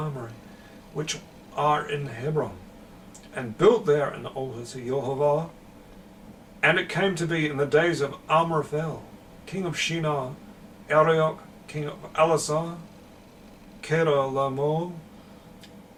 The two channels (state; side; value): identical; both; correlation 1.00